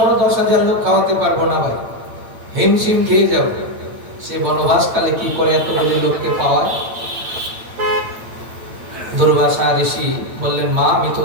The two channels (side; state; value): left; late; 8.8 ms